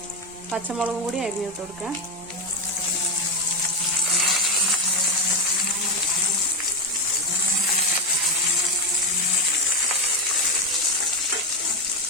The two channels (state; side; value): normal; both; correlation 0.10